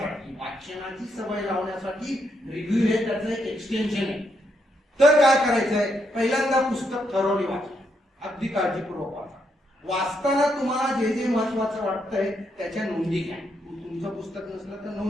वाचनाची सवय लावण्यासाठी रिव्ह्यू हे त्याचं एक एक्सटेन्शन आहे. तर काय करायचंय, पहिल्यांदा पुस्तक थरोली वाचा, अगदी काळजीपूर्वक वाचा. वाचताना तुम्हाला जे जे महत्वाचं वाटतंय त्याच्या नोंदी घ्या. तुमचं पुस्तक नसलं तर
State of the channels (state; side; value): normal; both; correlation 0.78